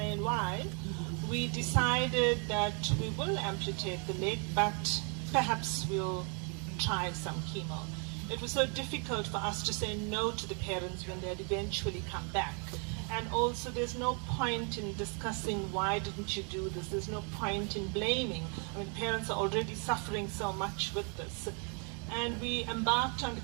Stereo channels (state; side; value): quieter; left; 38.1 dB